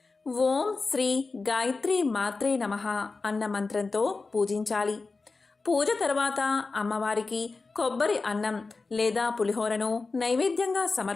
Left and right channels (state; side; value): quieter; right; 4.0 dB